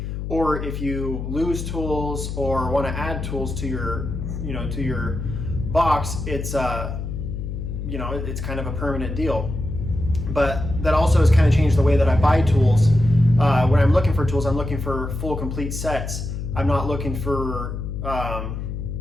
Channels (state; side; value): noise; left; hum, 5 dB below the sound